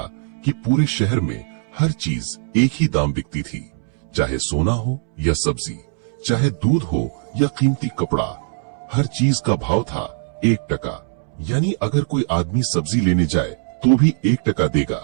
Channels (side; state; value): left; silent; 65 dB below the other